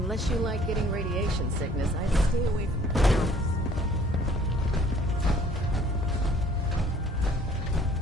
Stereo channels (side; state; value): both; normal; correlation 0.56